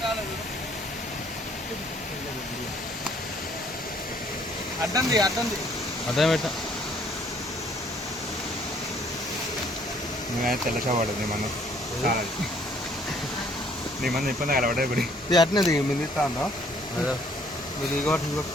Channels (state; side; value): normal; both; correlation 0.62